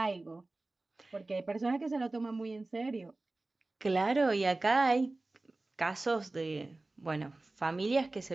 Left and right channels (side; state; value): left; quieter; 3.1 dB